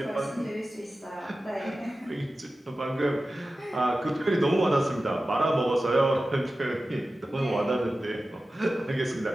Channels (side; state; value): both; normal; correlation 0.94